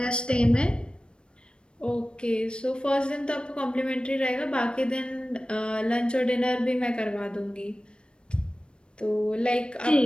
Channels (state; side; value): late; right; 0.055 ms